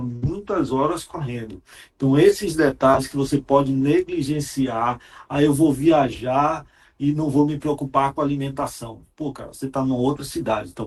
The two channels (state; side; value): identical; both; correlation 1.00